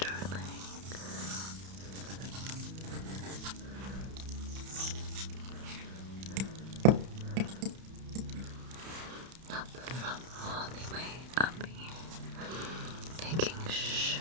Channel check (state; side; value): late; left; 31 ms